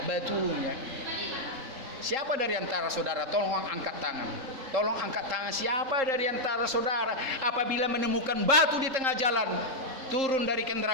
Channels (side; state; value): left; late; 3.8 ms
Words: batunya. Siapa dari antara saudara, tolong angkat tangan. Tolong angkat tangan, siapa dari antara saudara apabila menemukan batu di tengah jalan, turun dari